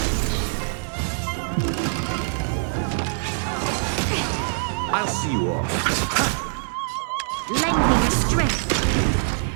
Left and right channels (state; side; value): silent; left; 63 dB below the other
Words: I'll see you off. Lend me your strength.